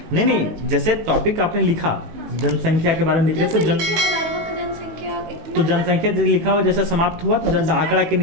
नहीं, जैसे टॉपिक आपने लिखा जनसंख्या के बारे में लिख रहे तो जनसंख्या लिखा हुआ जैसे समाप्त हुआ तो आंकड़ा के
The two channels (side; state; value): left; late; 19 ms